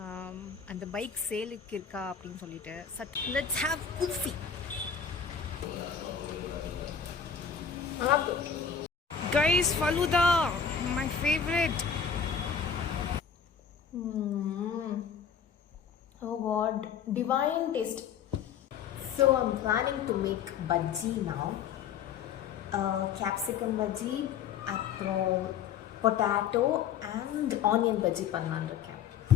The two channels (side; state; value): right; quieter; 7.2 dB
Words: அந்த பைக் சேலுக்கு இருக்கா அப்படின்னு சொல்லிட்டு. Let's have kulfi. Guys, falooda my favourite. Oh god, divine taste. So I'm planning to make bhaji now. Capsicum bhaji, அப்புறம் பொட்டேட்டோ அண்ட் ஆனியன் பஜ்ஜி பண்ணலான்னு இருக்கேன்.